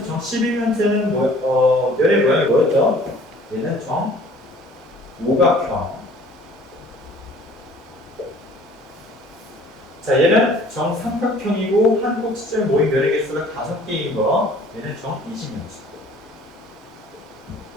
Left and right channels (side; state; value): both; normal; correlation 0.52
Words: 면의 모양이 뭐였죠? 얘는 정오각형. 자, 얘는 정삼각형이고 한 꼭지점에 모인 면의 개수가 5개인 거. 얘는 정20면체.